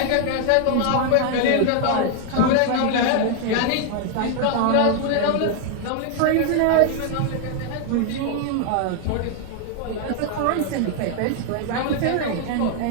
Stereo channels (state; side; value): different; both; correlation 0.00